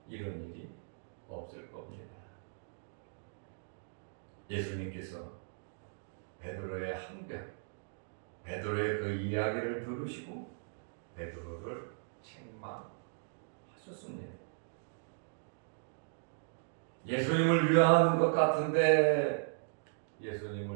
이런 일이 없을 겁니다. 예수님께서 베드로의 항변, 베드로의 그 이야기를 들으시고 베드로를 책망하셨습니다. 예수님을 위하는 것 같은데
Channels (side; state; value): left; silent; digital silence